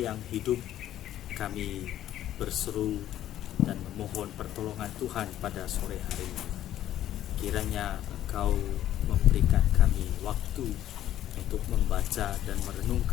yang hidup, kami berseru dan memohon pertolongan Tuhan pada sore hari ini. Kiranya Engkau memberikan kami waktu untuk membaca dan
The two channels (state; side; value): quieter; right; 12.3 dB